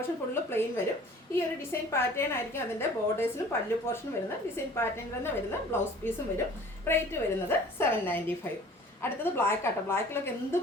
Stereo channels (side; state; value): both; normal; correlation 0.48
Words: full plain വരും. ഈ ഒരു ഡിസൈൻ പാറ്റേൺ ആയിരിക്കും അതിൻ്റെ ബോർഡേഴ്സിലും പല്ലു പോർഷൻ വരുന്നത്. ഡിസൈൻ പാറ്റേൺ തന്നെ വരുന്ന ബ്ലൗസ് പീസും വരും. റേറ്റ് വരുന്നത് 795. അടുത്തത് ബ്ലാക്ക് ആട്ടോ. ബ്ലാക്കിലൊക്കെ എന്ത്